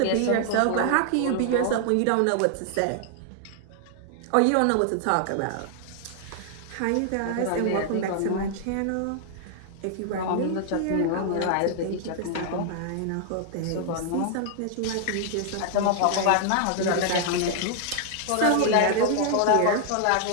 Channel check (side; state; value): both; different; correlation 0.00